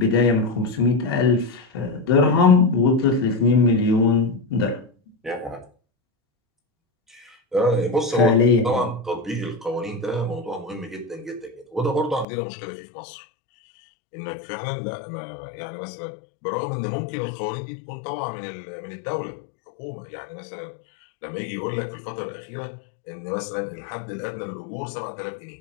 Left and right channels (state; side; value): drops out; right; at 12.2 s